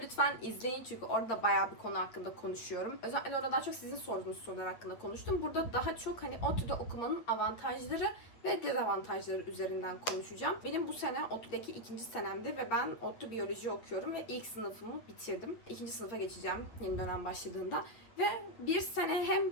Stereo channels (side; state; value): right; late; 8.9 ms